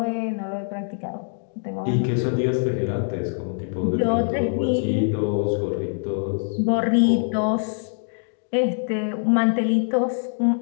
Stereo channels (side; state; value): right; silent; digital silence